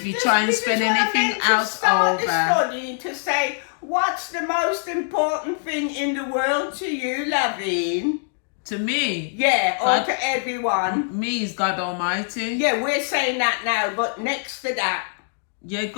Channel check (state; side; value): silent; right; digital silence